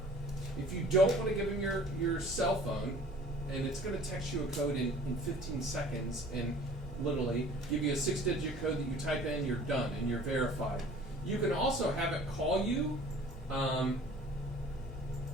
If you don't want to give them your cell phone, and it's going to text you a code in 15 seconds, and literally give you a 6-digit code that you type in, you're done, and you're verified. You can also have it call you,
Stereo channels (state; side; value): normal; both; correlation 0.48